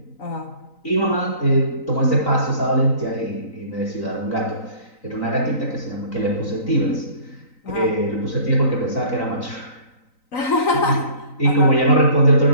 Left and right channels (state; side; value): late; right; 3.9 ms